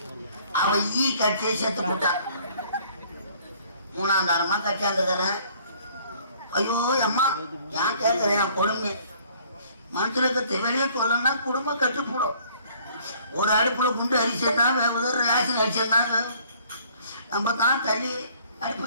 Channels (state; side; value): inverted; both; correlation -0.58